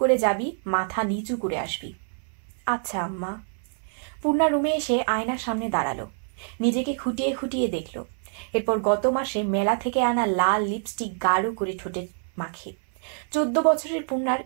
করে যাবি, মাথা নিচু করে আসবি। আচ্ছা আম্মা। পূর্ণা রুমে এসে আয়নার সামনে দাঁড়ালো। নিজেকে খুঁটিয়ে খুঁটিয়ে দেখল। এরপর গত মাসে মেলা থেকে আনা লাল লিপস্টিক গাঢ় করে ঠোঁটে মাখে। 14 বছরের পূর্ণার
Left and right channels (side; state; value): left; silent; 59 dB below the other